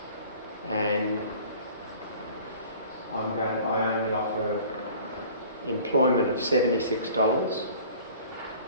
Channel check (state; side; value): inverted; both; correlation -0.47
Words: and I only offer employment of $76,